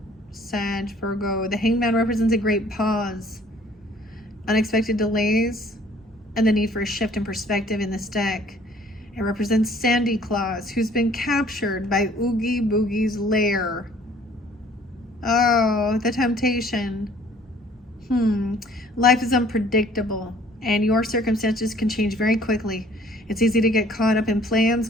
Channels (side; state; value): both; normal; correlation 0.56